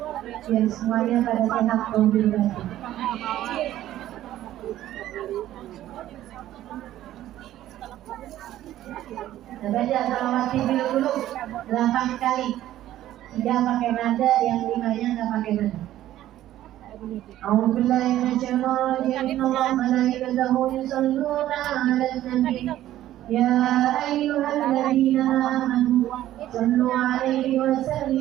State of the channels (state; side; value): quieter; left; 13.4 dB